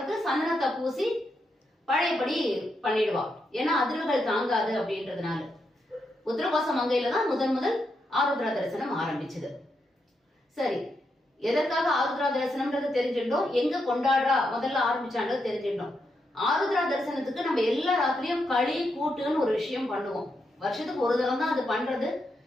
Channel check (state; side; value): normal; both; correlation 0.83